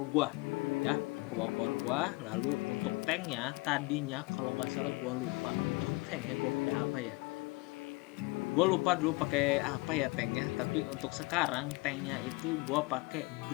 gua ya, 2 core gua. Lalu untuk tanknya tadinya kalau nggak salah gua lupa untuk tanknya gua pakai apa ya. Gue lupa dulu pakai apa ya tanknya, tapi untuk sekarang tanknya itu gue pakai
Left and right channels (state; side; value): quieter; right; 25.2 dB